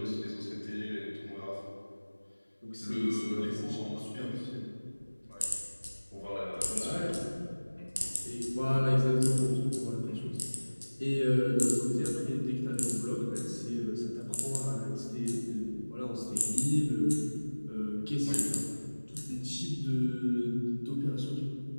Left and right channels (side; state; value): both; inverted; correlation -1.00